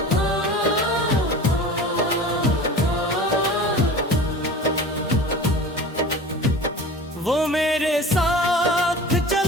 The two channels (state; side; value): normal; both; correlation 0.38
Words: वो मेरे साथ